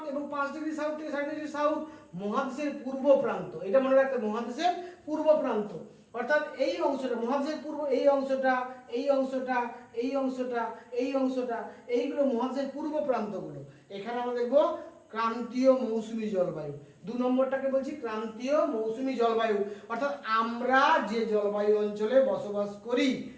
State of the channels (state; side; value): identical; both; correlation 1.00